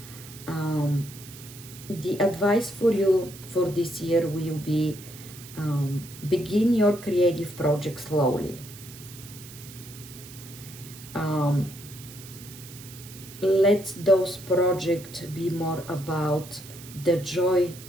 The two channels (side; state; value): right; noise; hiss, 16 dB below the sound